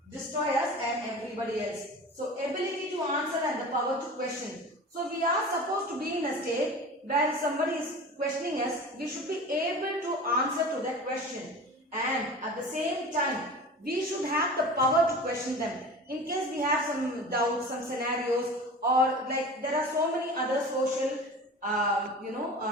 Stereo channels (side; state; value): both; normal; correlation 0.36